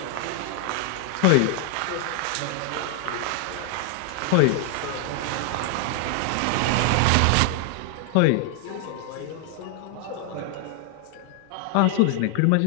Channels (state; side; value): different; both; correlation 0.00